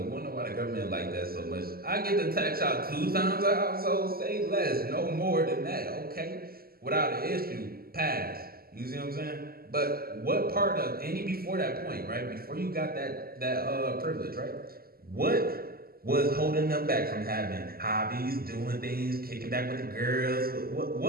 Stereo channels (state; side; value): late; left; 0.44 ms